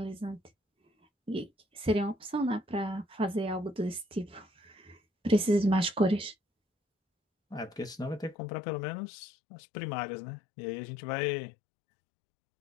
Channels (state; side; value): drops out; right; at 8.3 s